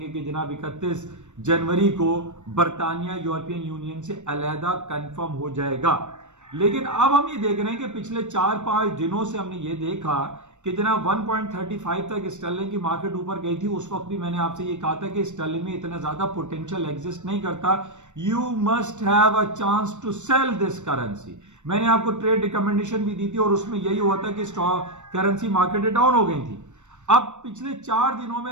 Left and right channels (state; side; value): late; left; 0.84 ms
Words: कि जनाब 31 जनवरी को बरतानिया यूरोपियन यूनियन से अलहदा कंफर्म हो जाएगा। लेकिन अब हम ये देख रहे हैं कि पिछले 4-5 दिनों से हमने ये देखा कि जनाब 1.35 तक स्टर्लिंग की मार्केट ऊपर गई थी। उस वक्त भी मैंने आपसे ये कहा था कि स्टर्लिंग में इतना ज्यादा पोटेंशियल एग्जिस्ट नहीं करता, you must have a chance to sell this currency. मैंने आपको ट्रेड रिकमेंडेशन भी दी थी और उसमें यही हुआ था कि करेंसी मार्केट डाउन हो गई थी। अब पिछले 4 दिनों